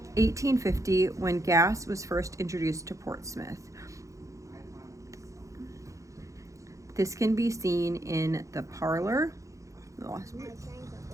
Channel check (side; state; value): left; late; 0.15 ms